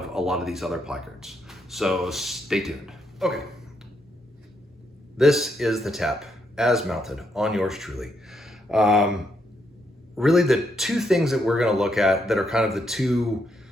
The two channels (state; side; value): normal; both; correlation 0.77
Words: a lot of these other placards. So stay tuned. Okay, this is the tap as mounted on yours truly. Really the two things that we're going to look at that are kind of the two